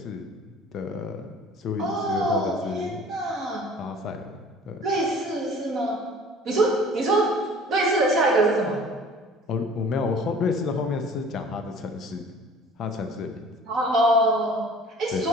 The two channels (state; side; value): normal; both; correlation 0.47